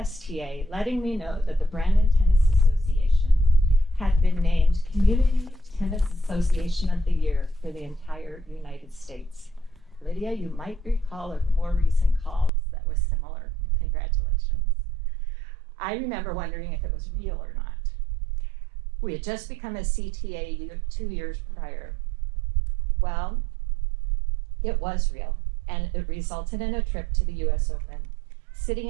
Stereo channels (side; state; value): left; drops out; at 12.5 s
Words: letting me know that the Brandon Tennis Association had been named Community Tennis Association of the Year for the entire United States. Lydia, you might recall a more recent call that was similar. Congratulations. I remember wondering if it was real or not. We had just become a CTA 2 years prior. Well, it was real, and it resulted in a trip to the US Open, sitting